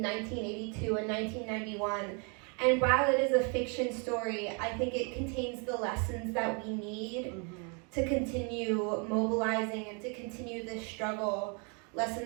1982 and 1991. And while it is a fiction story, I think it contains the lessons that we need to continue mobilizing and to continue this struggle.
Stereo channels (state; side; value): quieter; left; 35.6 dB